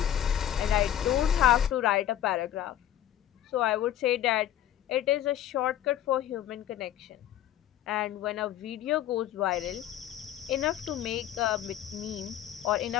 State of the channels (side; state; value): right; quieter; 11.5 dB